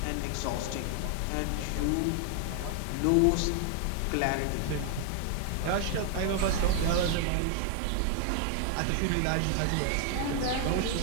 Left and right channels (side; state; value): both; different; correlation 0.00